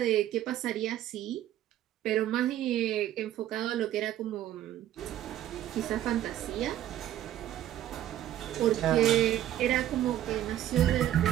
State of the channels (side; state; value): left; quieter; 12.5 dB